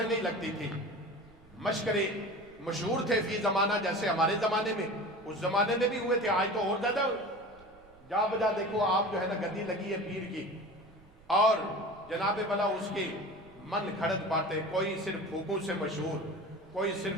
نہیں لگتی تھی، مشکرے مشہور تھے فی زمانہ، جیسے ہمارے زمانے میں، اس زمانے میں بھی ہوئے تھے، آج تو اور زیادہ جا بجا دیکھو آپ جو ہے نا گدی لگی ہے پیر کی، اور جناب بلا اس کی من گھڑت باتیں، کوئی صرف پھوکوں سے مشہور، کوئی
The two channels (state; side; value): noise; right; rumble, 27 dB below the sound